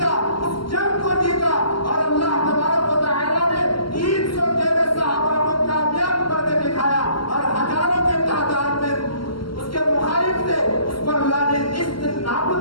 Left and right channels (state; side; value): late; right; 0.73 ms